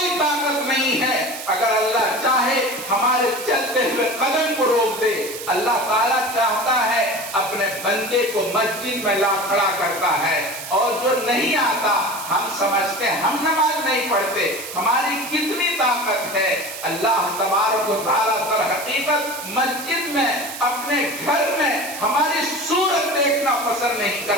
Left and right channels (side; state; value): right; noise; hiss, 10 dB below the sound